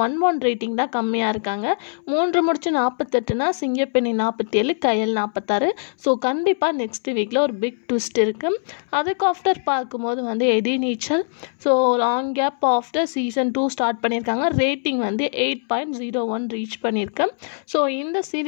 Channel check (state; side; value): silent; right; 64 dB below the other